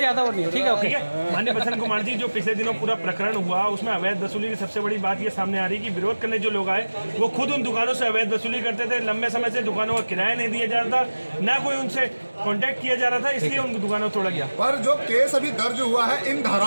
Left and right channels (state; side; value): inverted; both; correlation -1.00